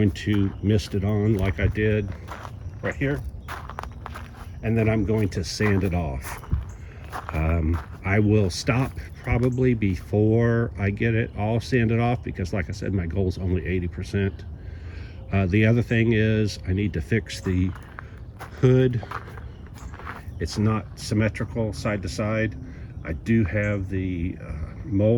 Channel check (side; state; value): both; identical; correlation 1.00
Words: to mist it on like I did right here, and then I'm going to sand it off. I will stop probably before I get it all sanded off because, like I said, my goal is only 80%. The other thing is I need to fix the hood. It's not symmetrical side to side. I do have the